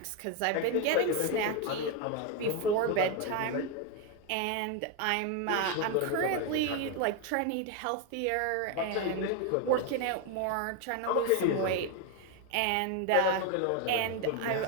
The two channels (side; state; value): both; different; correlation 0.02